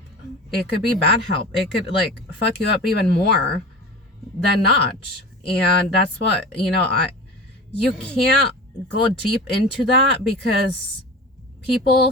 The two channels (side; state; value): both; normal; correlation 0.33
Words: It could be bad help. It could like fuck you up even more than not. And that's what, you can't go deep into that, because people